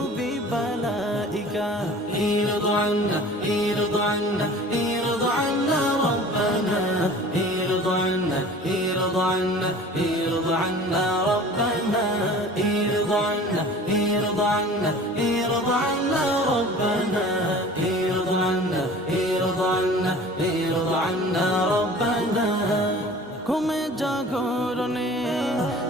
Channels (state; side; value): normal; both; correlation 0.43